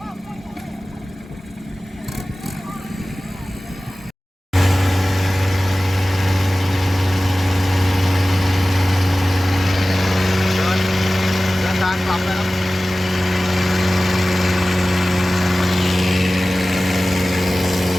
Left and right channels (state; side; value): normal; both; correlation 0.97